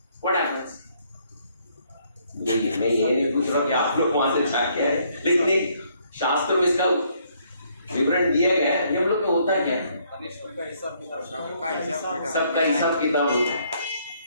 व्हाट हैपेंस? मैं ये नहीं पूछ रहा कि आप लोग वहां से जाके आए, लेकिन शास्त्र में इसका विवरण दिया गया है। यमलोक में होता क्या है? सबका हिसाब किताब होता है।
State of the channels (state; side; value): inverted; both; correlation -0.68